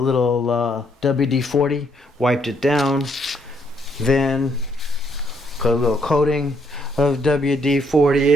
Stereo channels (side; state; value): both; normal; correlation 0.71